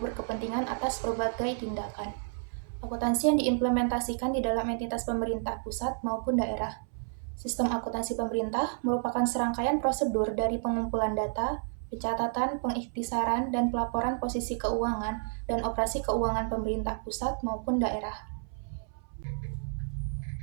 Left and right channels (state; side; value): silent; left; 57 dB below the other